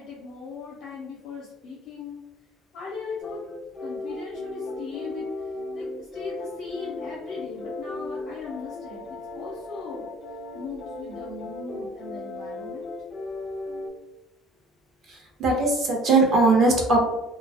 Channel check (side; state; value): both; normal; correlation 0.49